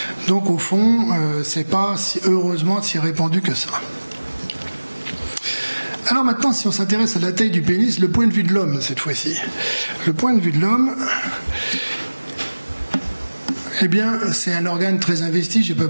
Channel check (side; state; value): both; inverted; correlation -1.00